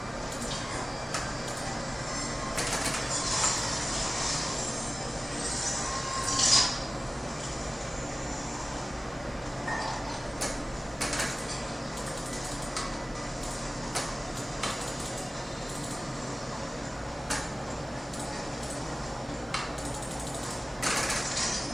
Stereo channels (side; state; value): both; normal; correlation 0.96